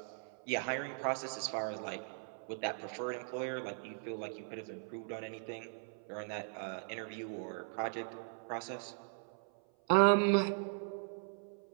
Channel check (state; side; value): silent; left; 52 dB below the other